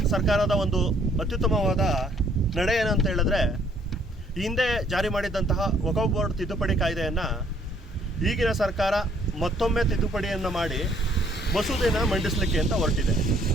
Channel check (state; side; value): normal; both; correlation 0.64